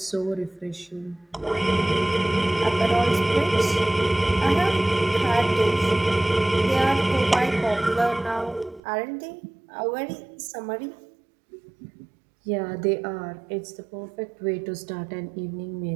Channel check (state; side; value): drops out; left; at 8.8 s